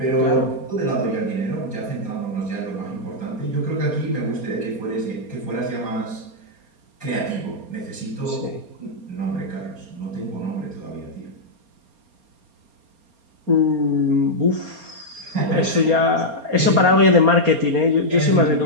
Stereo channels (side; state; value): left; late; 4.3 ms